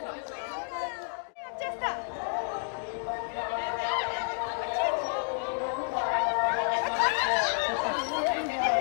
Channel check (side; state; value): right; silent; digital silence